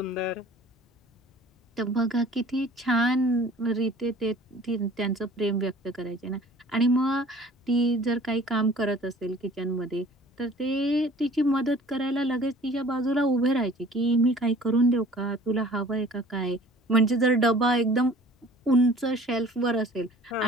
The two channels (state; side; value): normal; both; correlation 0.49